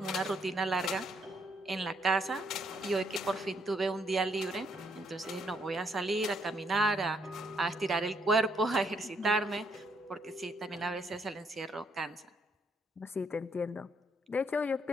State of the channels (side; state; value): both; normal; correlation 0.72